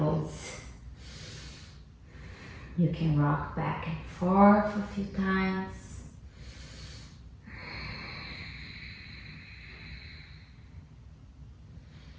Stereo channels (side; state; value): both; identical; correlation 1.00